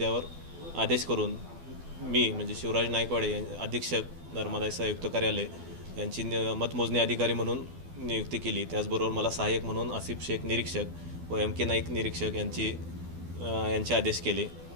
आदेश करून मी म्हणजे शिवराज नाईकवाडे अधीक्षक धर्मादाय आयुक्त कार्यालय यांची मतमोजणी अधिकारी म्हणून नियुक्ती केली। त्याचबरोबर मला सहाय्यक म्हणून आसिफ शेख निरीक्षक व MK नाईक निरीक्षक यांचे आदेश केले।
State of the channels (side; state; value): left; late; 12 ms